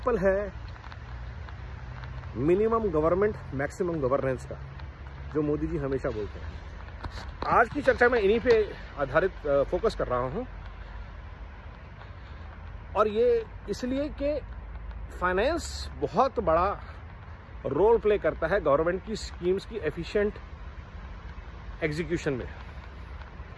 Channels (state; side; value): identical; both; correlation 1.00